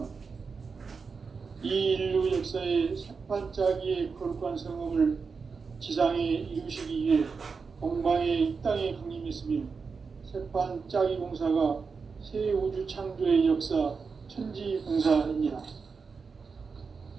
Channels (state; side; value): quieter; left; 5.1 dB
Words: 이 인류 역사의 새반짝이의 거룩한 성험을 지상에 이루시기 위해 동방의 이 땅에 강림했으며 새반짝이 공사가 새 우주 창조의 역사 천지공사입니다.